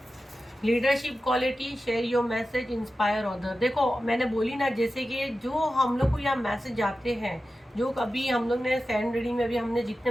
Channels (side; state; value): both; normal; correlation 0.93